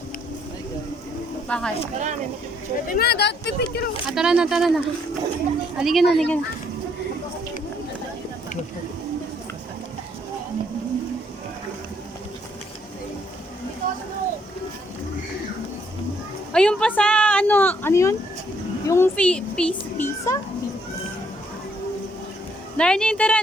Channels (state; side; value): normal; both; correlation 0.69